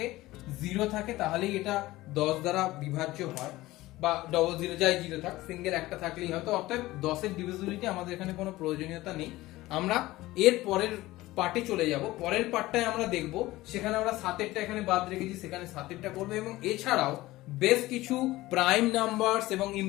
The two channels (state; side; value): quieter; right; 18.0 dB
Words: থাকে তাহলেই এটা 10 দ্বারা বিভাজ্য হয়, বা ডবল 0 যাই 0 থাক, সিঙ্গেল একটা থাকলেই হয়। তো অর্থাৎ 10 এর ডিভিজিবিলিটি আমাদের এখানে কোনো প্রয়োজনীয়তা নেই। আমরা এর পরের পার্টে চলে যাব। পরের পার্টটায় আমরা দেখব, সেখানে আমরা 7 এরটা এখানে বাদ রেখেছি, সেখানে 7 এরটা করব, এবং এছাড়াও বেশ কিছু প্রাইম নাম্বারস এবং